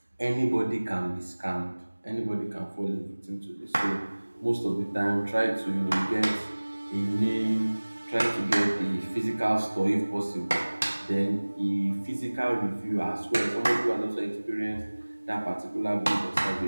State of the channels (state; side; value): inverted; both; correlation -1.00